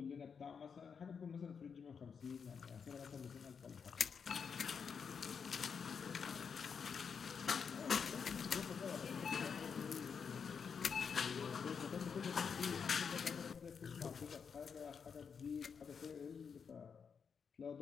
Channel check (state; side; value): quieter; right; 6.3 dB